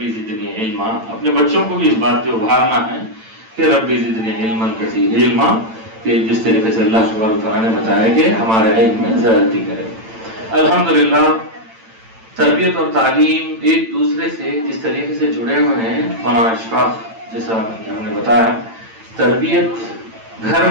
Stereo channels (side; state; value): left; late; 8.9 ms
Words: زدنی علما. اپنے بچوں کو بھی اس بات پہ ابھارنا ہے کہ ربی زدنی علما کثیر علما، کہ جس طریقے سے اللہ تبارک تعالیٰ نے بتایا کہ ہمارے علم میں زیادتی کرے. الحمدللہ تربیت اور تعلیم ایک دوسرے سے جس طریقے سے جڑے ہوئے ہیں. مولانا اشفاق جیسا ہم نے بتایا، تربیت گھر